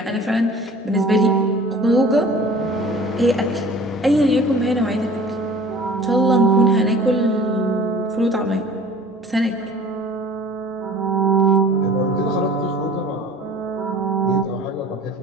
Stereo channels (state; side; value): normal; both; correlation 0.46